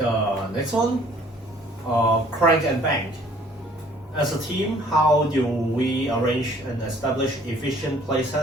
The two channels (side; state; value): both; normal; correlation 0.57